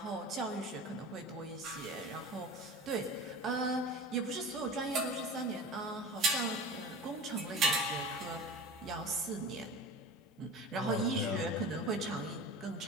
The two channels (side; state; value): both; normal; correlation 0.35